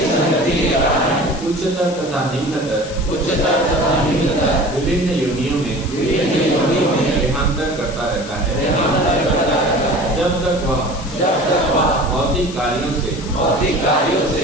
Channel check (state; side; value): noise; left; hiss, 15 dB below the sound